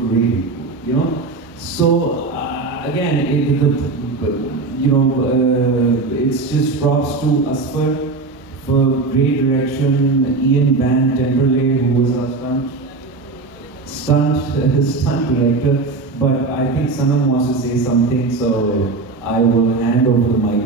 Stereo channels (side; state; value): left; quieter; 3.9 dB